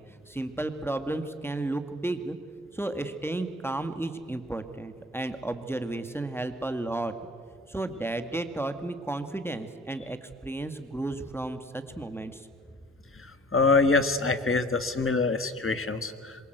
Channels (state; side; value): normal; both; correlation 0.50